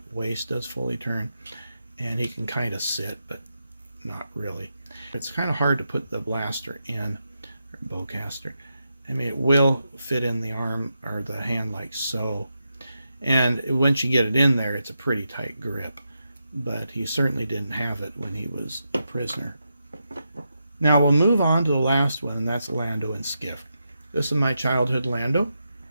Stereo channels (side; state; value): both; inverted; correlation -0.86